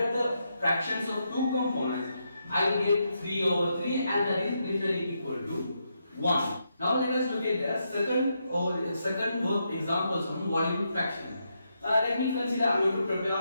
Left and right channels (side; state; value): both; inverted; correlation -0.82